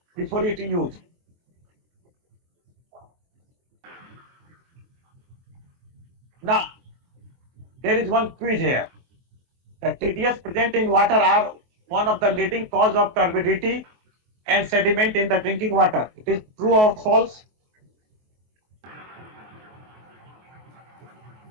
before it used. Now there is one quiz here. The TDS present in water are one of the leading cause of turbidity and sediment in the drinking water. It is true or false?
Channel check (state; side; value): late; left; 23 ms